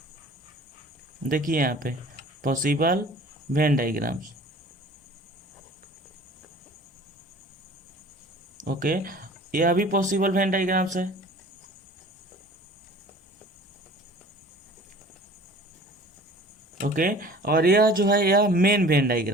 देखिए यहाँ पे पॉसिबल वेन डायग्राम्स। ओके, यह भी पॉसिबल वेन डायग्राम्स है। ओके, और यह जो है यह मेन वेन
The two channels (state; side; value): normal; both; correlation 0.46